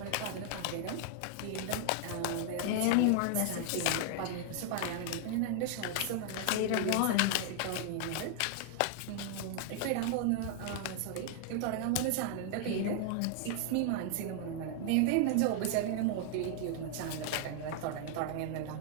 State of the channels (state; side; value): different; both; correlation 0.00